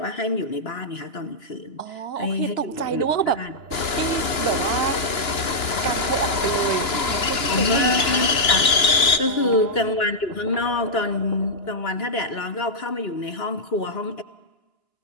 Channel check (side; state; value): right; late; 2.9 ms